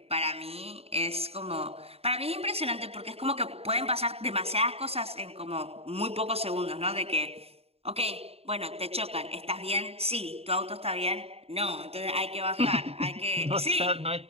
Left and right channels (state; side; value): late; left; 0.29 ms